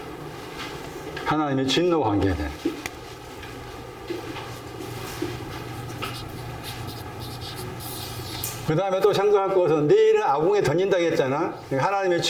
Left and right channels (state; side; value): identical; both; correlation 1.00